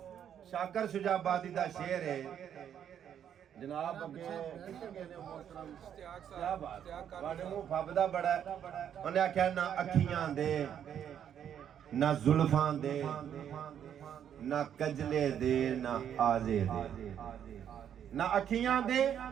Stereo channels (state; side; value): quieter; left; 9.2 dB